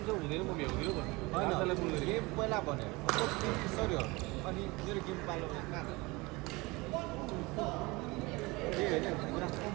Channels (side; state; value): left; quieter; 24.0 dB